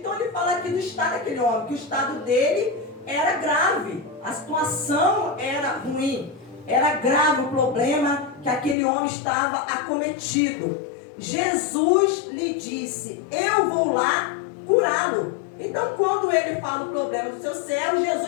ele fala aqui do estado daquele homem, que o estado dele era grave, a situação era ruim, era grave o problema que aquele homem estava acometido. Jesus lhe disse, eu vou lá curá-lo. Então quando ele fala o problema do seu servo,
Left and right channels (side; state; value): right; drops out; at 8.8 s